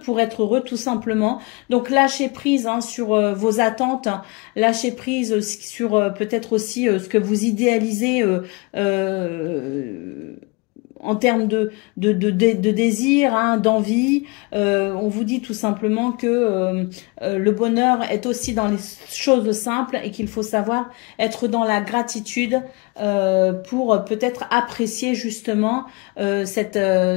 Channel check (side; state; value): right; quieter; 28.3 dB